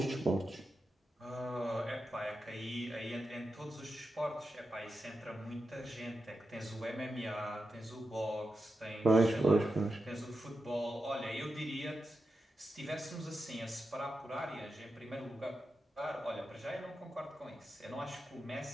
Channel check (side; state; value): both; normal; correlation 0.89